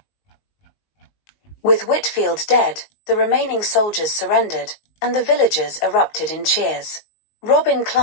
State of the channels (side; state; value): right; late; 19 ms